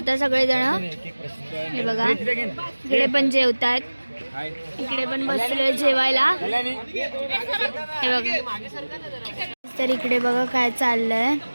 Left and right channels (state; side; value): inverted; both; correlation -1.00